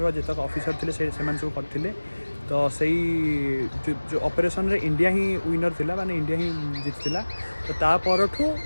जितक ऑफिसर थे से सब करते। तो सही जो ऑपरेशन रे इंडिया ही विनर थिला माने इंडिया ही जीतला। तो ता परठू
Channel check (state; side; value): inverted; both; correlation -1.00